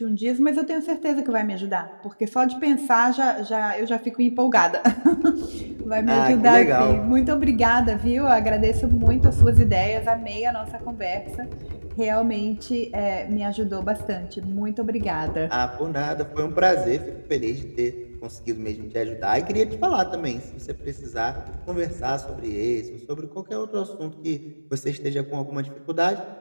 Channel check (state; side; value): inverted; both; correlation -1.00